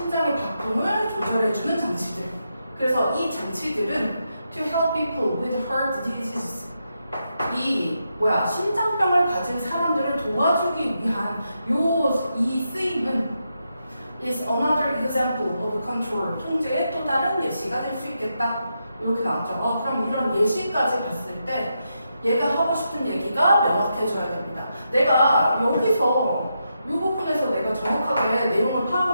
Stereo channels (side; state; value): both; inverted; correlation -0.84